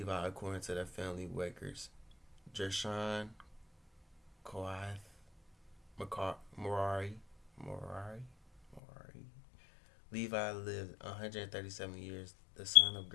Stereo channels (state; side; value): drops out; right; at 8.8 s